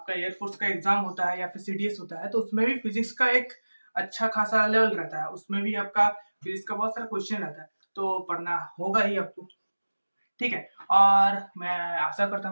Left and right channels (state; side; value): inverted; both; correlation -1.00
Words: एयरफोर्स का एग्जाम होता है या फिर सीडीएस होता है, तो उसमें भी फिजिक्स का एक अच्छा खासा लेवल रहता है। उसमें भी आपका फिजिक्स का बहुत सारा क्वेश्चन रहता है, तो पढ़ना होगा ही आपको। ठीक है, और मैं आशा करता